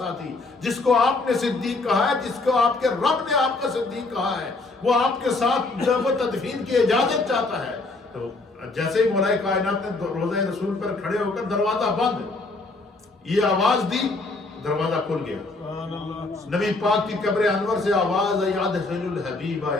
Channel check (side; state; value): right; quieter; 3.4 dB